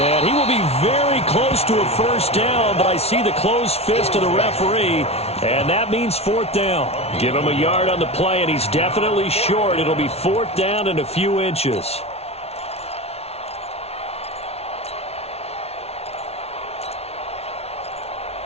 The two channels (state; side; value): late; right; 0.30 ms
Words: he will be very close to a first down, but I see the closed fist of the referee, and that means 4th down. Give him a yard on the play, and he's definitely short. It'll be 4th down and a few inches.